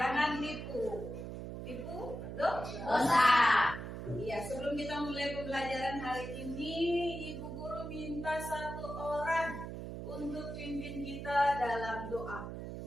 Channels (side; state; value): right; noise; hum, 7 dB below the sound